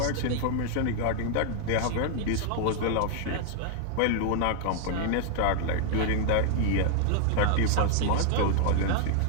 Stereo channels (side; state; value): both; different; correlation 0.00